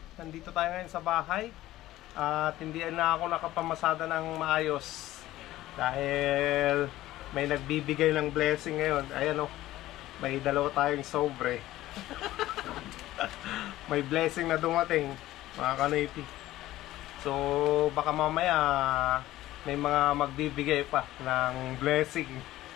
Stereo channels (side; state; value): right; quieter; 15.5 dB